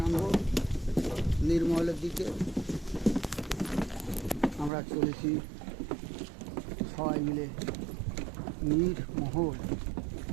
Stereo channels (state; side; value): drops out; left; at 4.7 s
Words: নামব নির্মলের দিকে। আমরা চলেছি সবাই মিলে নির্মহল।